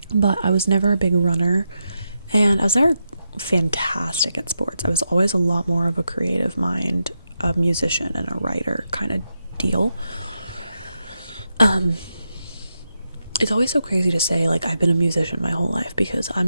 but I was never a big runner, and I was never fantastic at sports. I was always a lot more of a creative mind, a musician and a writer kind of deal. It's always so crazy to say, like, I've been a musician my whole life, because I'm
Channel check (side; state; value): both; inverted; correlation -0.86